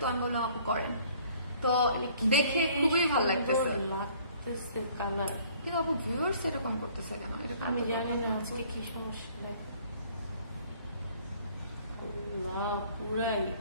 আমি বললাম আপু করেন, তো দেখে খুবই ভালো লাগতেছে কালার। কিন্তু আপু ভিউয়ার্স এরকম করতেছে কেন? আমি জানি না আজকে কি সমস্যা। পুরাই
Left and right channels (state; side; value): inverted; both; correlation -0.57